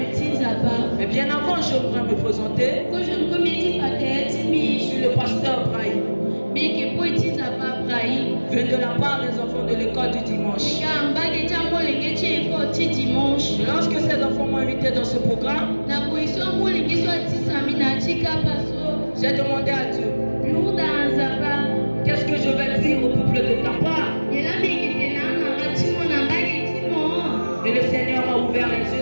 Mais bien avant, j'aimerais me présenter. Je suis le pasteur Brahim. Vient de la part des enfants de l'école du dimanche. Lorsque ces enfants m'ont invité dans ce programme, j'ai demandé à Dieu, qu'est-ce que je vais dire au peuple de ta part? Et le Seigneur m'a ouvert les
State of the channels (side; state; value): both; inverted; correlation -1.00